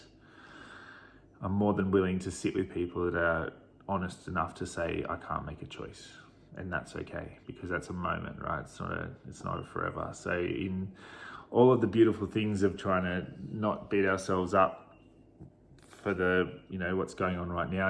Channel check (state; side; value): identical; both; correlation 1.00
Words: I'm more than willing to sit with people that are honest enough to say, I can't make a choice. And that's okay, because that's a moment, right? It's not a forever. So in all of the beautiful things of trying to not beat ourselves up for the, what's going on right now,